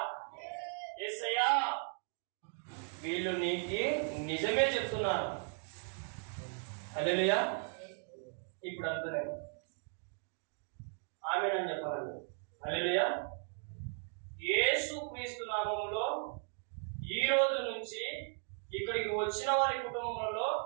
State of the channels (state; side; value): silent; left; 53 dB below the other